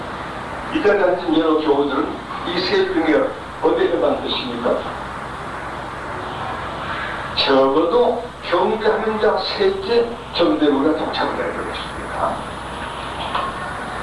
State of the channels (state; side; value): identical; both; correlation 1.00